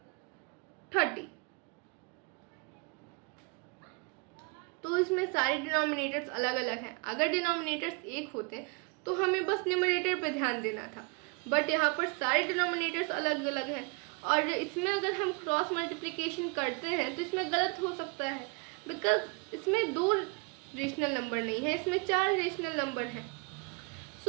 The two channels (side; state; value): left; quieter; 31.2 dB